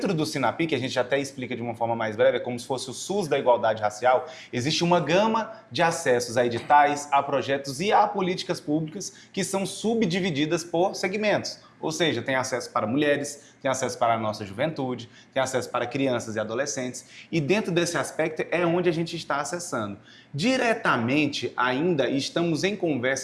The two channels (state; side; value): identical; both; correlation 1.00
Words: do SINAPI, que a gente até explica de uma forma mais breve, é como se fosse o SUS da igualdade racial, existe uma gama de acessos a editais, a projetos e a políticas públicas que são subdivididas por segmentos. Ou seja, tem acesso para mulheres, tem acesso para a nossa juventude, tem acesso para crianças e adolescentes. E dentro desse aspecto é onde a gente está acessando. Diretamente, ainda estamos em